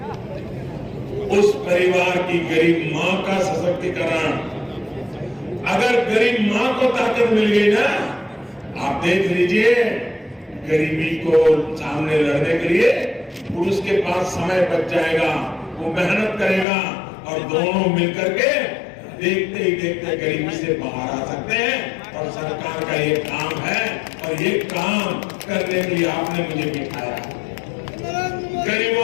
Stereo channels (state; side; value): drops out; right; at 16.7 s